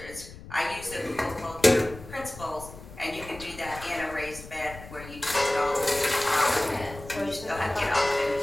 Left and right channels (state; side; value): noise; left; rumble, 16 dB below the sound